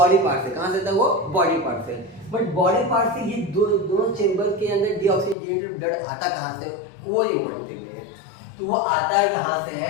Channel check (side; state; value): right; drops out; at 5.4 s